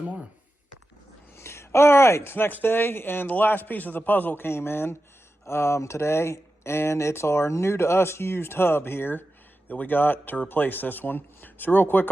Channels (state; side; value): normal; both; correlation 0.92